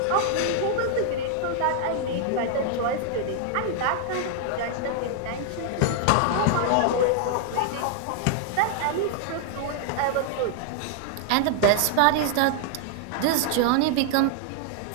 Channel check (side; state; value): both; different; correlation 0.00